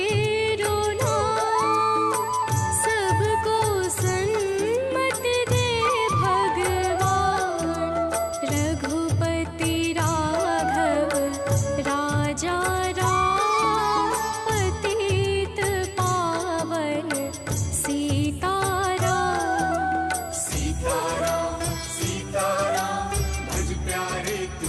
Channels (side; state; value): both; identical; correlation 1.00